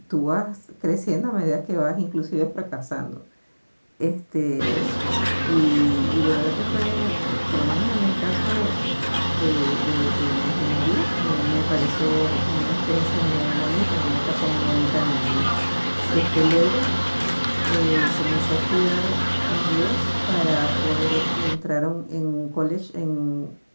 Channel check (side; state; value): both; inverted; correlation -1.00